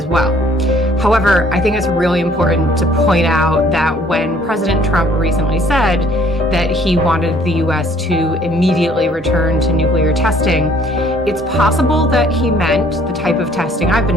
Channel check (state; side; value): normal; both; correlation 0.59